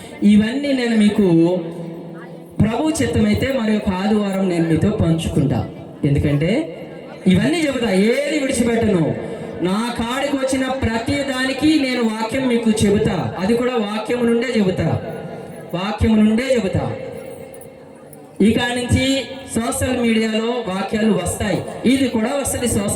ఇవన్నీ నేను మీకు ప్రభు చిత్తమైతే మరి ఒక ఆదివారం నేను మీతో పంచుకుంటా. ఎందుకంటే ఇవన్నీ చెబుతా, ఏది విడిచిపెట్టను. నా కాడికి వచ్చిన ప్రతి దానికి నేను వాక్యం మీకు చెబుతా. అది కూడా వాక్యం నుండే చెబుతా. ఇక నుంచి సోషల్ మీడియాలో వాక్యాలు వస్తాయి, ఇది కూడా వస్తుంది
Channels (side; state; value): both; identical; correlation 1.00